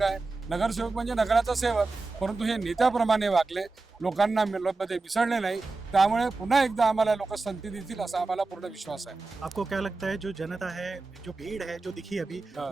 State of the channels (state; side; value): quieter; left; 3.6 dB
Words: आहे। नगरसेवक म्हणजे नगराचा सेवक, परंतु हे नेत्याप्रमाणे वागले, लोकांना मध्ये मिसळले नाही, त्यामुळे पुन्हा एकदा आम्हाला लोक संधी देतील असा आम्हाला पूर्ण विश्वास आहे। आपको क्या लगता है जो जनता है, जो भीड़ है जो दिखी अभी,